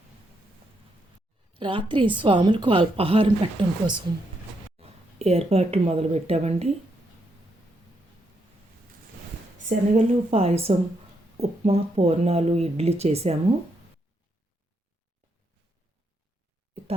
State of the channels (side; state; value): both; normal; correlation 0.78